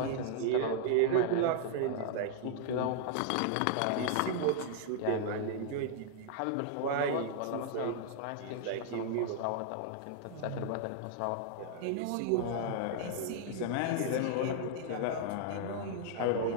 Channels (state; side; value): different; both; correlation -0.01